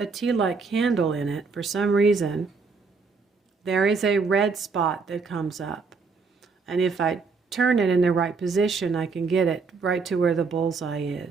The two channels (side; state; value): left; quieter; 4.7 dB